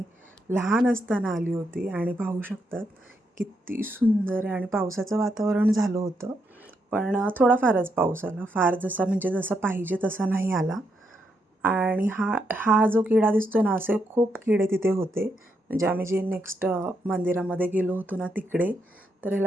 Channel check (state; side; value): normal; both; correlation 0.79